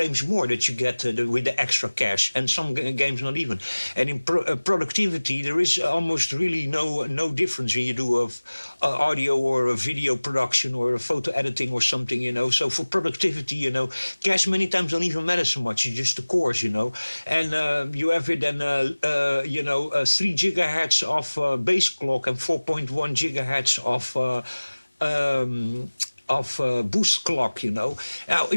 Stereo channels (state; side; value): inverted; both; correlation -1.00